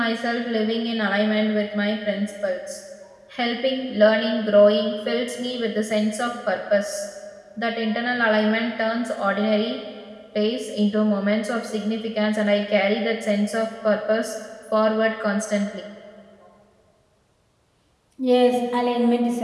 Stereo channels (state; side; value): identical; both; correlation 1.00